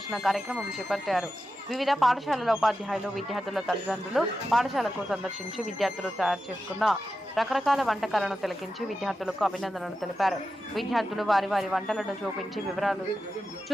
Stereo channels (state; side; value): normal; both; correlation 0.91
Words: కార్యక్రమం చేపట్టారు. వివిధ పాఠశాలల ఉపాధ్యాయులు, విద్యార్థుల తల్లిదండ్రులు పాఠశాలకు సందర్శించి విద్యార్థులు తయారు చేసుకున్న రకరకాల వంటకాలను తిలకించి విద్యార్థులకు అభినందనలు తెలిపారు. విద్యార్థులు వారి వారి వంటలను